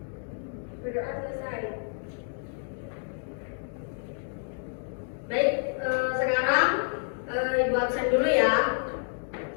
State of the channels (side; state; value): right; silent; 58 dB below the other